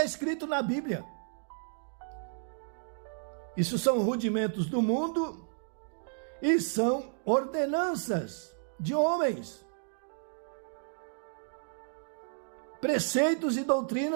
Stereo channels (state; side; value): silent; left; digital silence